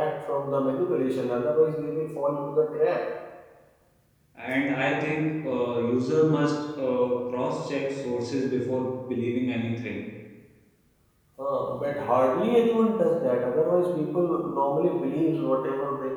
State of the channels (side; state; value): both; identical; correlation 1.00